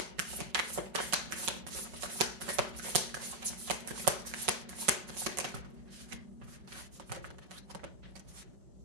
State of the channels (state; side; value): late; left; 5.4 ms